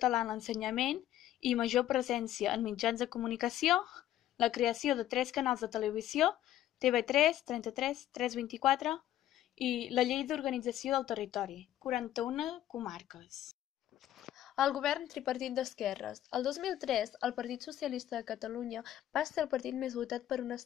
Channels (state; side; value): quieter; right; 12.7 dB